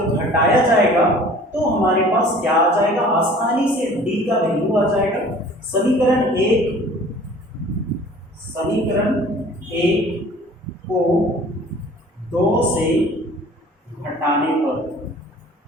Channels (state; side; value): normal; both; correlation 0.48